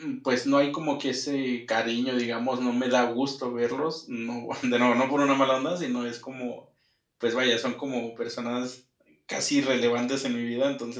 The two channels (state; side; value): identical; both; correlation 1.00